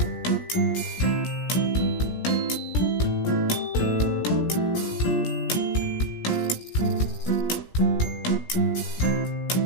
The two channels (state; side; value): late; right; 17 ms